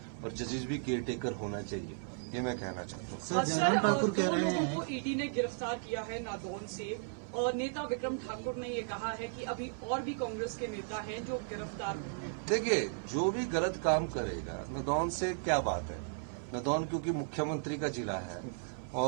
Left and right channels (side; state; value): left; silent; 54 dB below the other